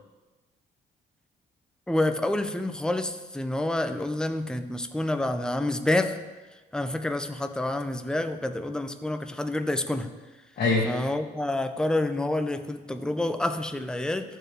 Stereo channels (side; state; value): both; normal; correlation 0.82